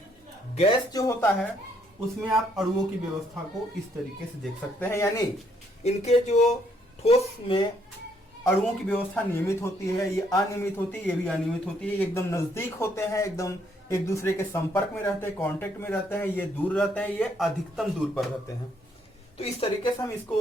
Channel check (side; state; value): both; normal; correlation 0.70